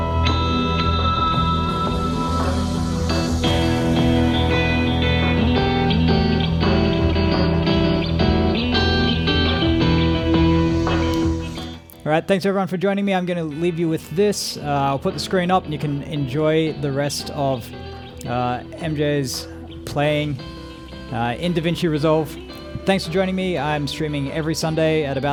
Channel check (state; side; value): identical; both; correlation 1.00